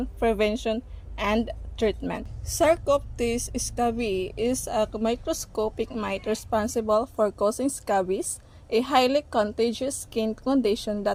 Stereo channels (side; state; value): both; identical; correlation 1.00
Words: prevention, and treatment. Sarcoptes scabiei is a microscopic mite responsible for causing scabies, a highly contagious skin condition